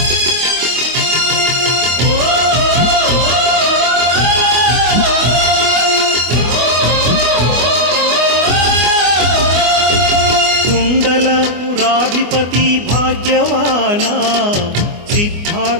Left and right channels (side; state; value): left; late; 25 ms